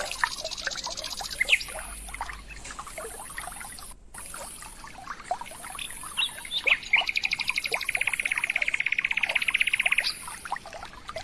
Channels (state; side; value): identical; both; correlation 1.00